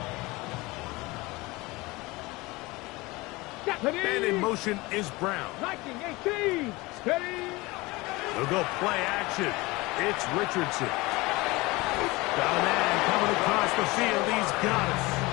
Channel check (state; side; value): quieter; right; 22.4 dB